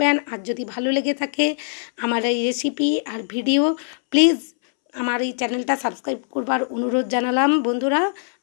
আর যদি ভালো লেগে থাকে আমার এই রেসিপি আর ভিডিও, প্লিজ আমার এই চ্যানেলটা সাবস্ক্রাইব করবার অনুরোধ জানালাম বন্ধুরা।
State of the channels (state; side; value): silent; right; 64 dB below the other